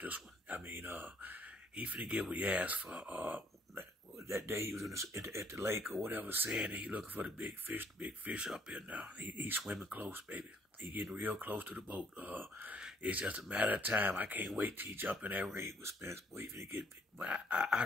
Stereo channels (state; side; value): normal; both; correlation 0.65